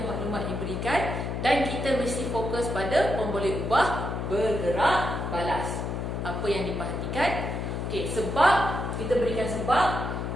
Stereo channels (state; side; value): noise; left; hum, 3 dB below the sound